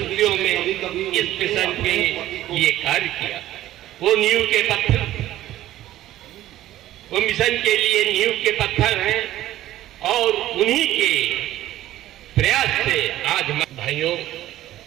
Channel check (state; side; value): quieter; left; 14.2 dB